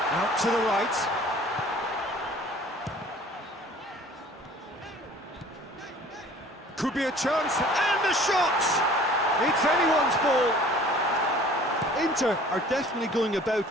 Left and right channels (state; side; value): normal; both; correlation 0.49